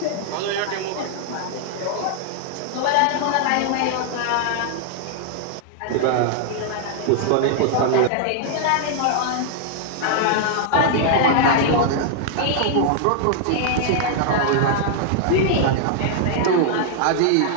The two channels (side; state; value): both; different; correlation -0.01